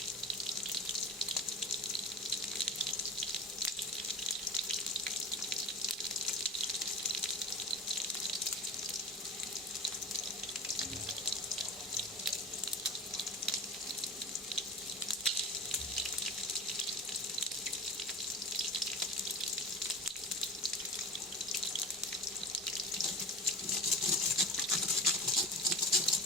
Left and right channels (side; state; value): both; normal; correlation 0.31